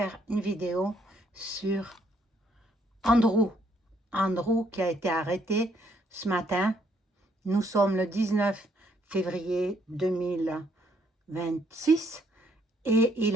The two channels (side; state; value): both; normal; correlation 0.70